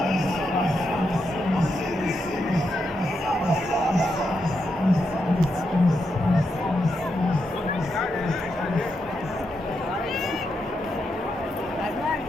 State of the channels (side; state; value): both; normal; correlation 0.83